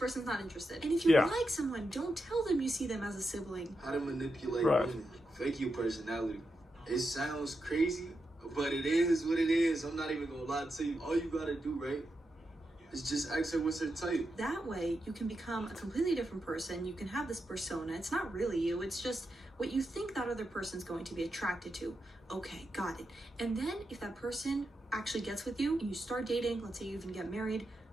not interested. And if you like someone, don't tell them you see them as a sibling. How to manipulate women. Fake your personality. It sounds crazy, but it is what it is. I'm not even gonna lie to you. All you gotta do, right, is just ask her what's her type. That way, you can become a completely different person. You can have this persona. It's not really you. It's just what you think that other person's going to be attracted to. Okay, got it. And then if that person actually gets with you and you start dating, let's say you even get married,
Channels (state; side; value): normal; both; correlation 0.86